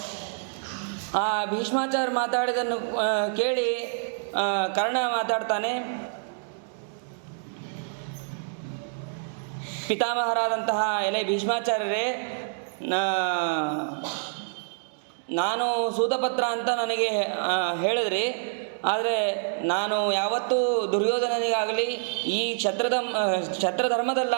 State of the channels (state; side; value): silent; left; digital silence